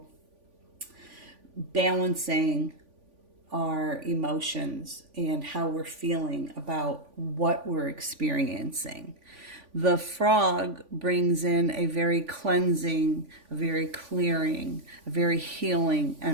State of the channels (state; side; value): late; left; 3.5 ms